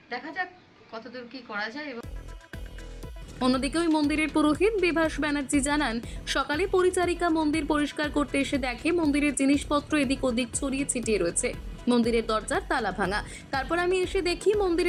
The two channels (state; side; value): identical; both; correlation 1.00